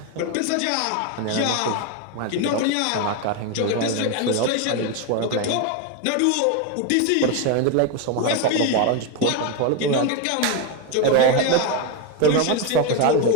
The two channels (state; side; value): different; both; correlation 0.02